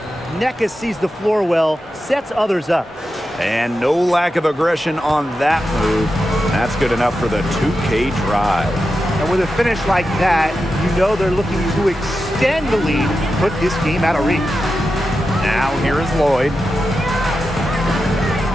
Nneka sees the floor well, sets others up. And no lack of aggression on that move. That's good enough for the 2K drive. And with a finish like that, you know they're looking to extend the lead, put this game out of reach. Now here is Lloyd.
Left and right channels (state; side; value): normal; both; correlation 0.90